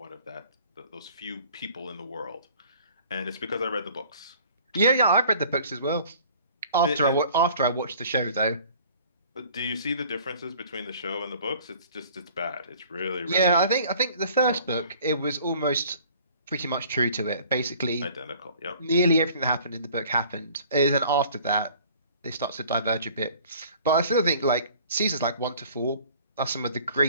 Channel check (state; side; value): inverted; both; correlation -0.51